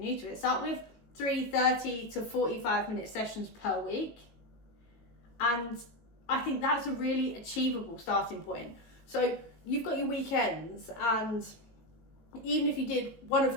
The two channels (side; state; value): right; late; 19 ms